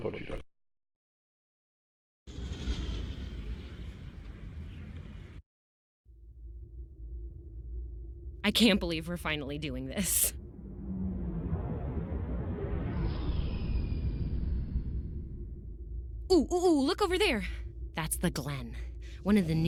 wieder. I can't believe we're finally doing this. Ooh, look over there. That's the Glen, one of the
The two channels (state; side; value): identical; both; correlation 1.00